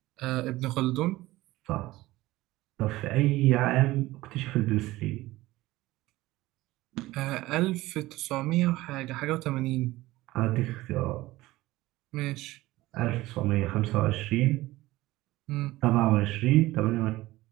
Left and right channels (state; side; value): quieter; left; 18.0 dB